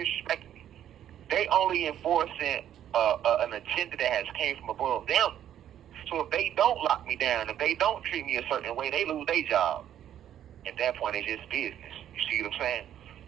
me. They only enforcing an agenda that has came from above them. So if they don't lock me down, if they don't treat me a certain way, they lose their job. At that point, it's just business. You see what I'm saying?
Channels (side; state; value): left; quieter; 10.7 dB